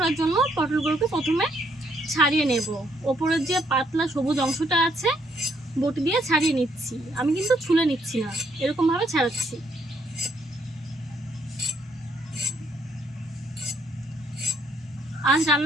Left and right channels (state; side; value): normal; both; correlation 0.71